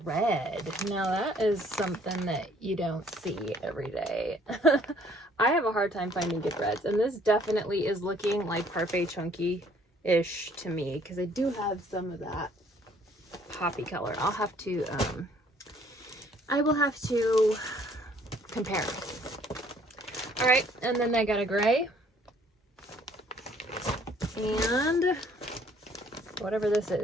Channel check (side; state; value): both; normal; correlation 0.61